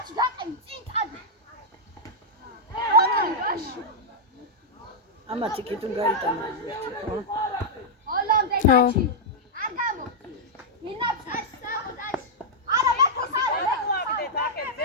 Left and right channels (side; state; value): both; normal; correlation -0.06